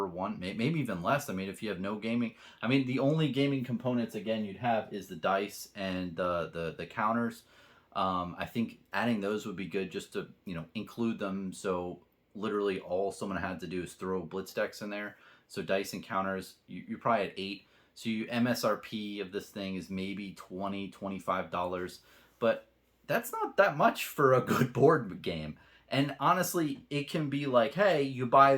one, maybe even less. I mean, if you have no gaming, I mean, the only gaming components again you'd have is the dice and the counters. I think adding those would be good just to include them. So literally all someone had to do is throw blitz decks in there. So dice and counters, you're probably at 8. So you MSRP of this thing is maybe $20-$25, but that's not that much for a good board game. And honestly, it can be like, hey, you buy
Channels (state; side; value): identical; both; correlation 1.00